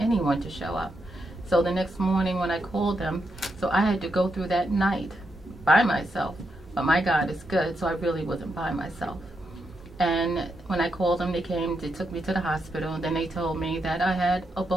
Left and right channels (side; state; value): both; normal; correlation 0.83